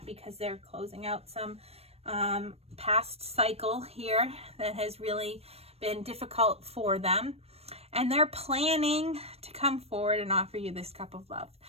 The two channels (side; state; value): left; late; 0.29 ms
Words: because they're closing out some past cycle here that has really been difficult for them. And they're planning to come forward and offer you this cup of love.